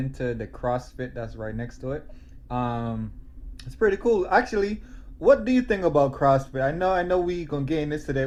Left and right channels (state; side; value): identical; both; correlation 1.00